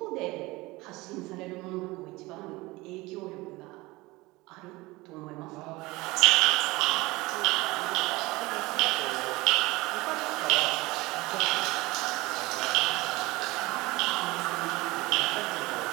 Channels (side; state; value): left; quieter; 21.4 dB